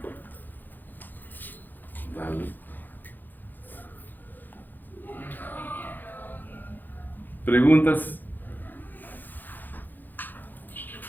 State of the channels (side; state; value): right; late; 0.087 ms